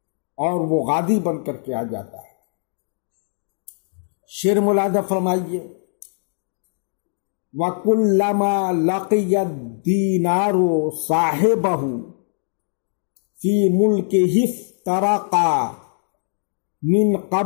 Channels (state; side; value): silent; right; digital silence